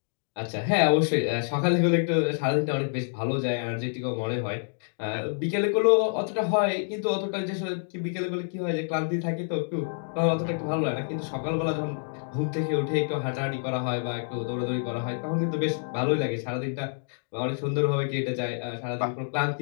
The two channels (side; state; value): right; silent; digital silence